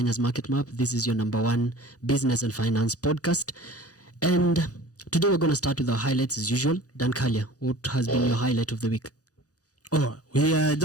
Market Map. This is your number one business and finance podcast. And today we're going to start with our highlights as usual. Dan Kalia, what has been your highlight of the week? Oh, we are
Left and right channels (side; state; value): right; late; 0.67 ms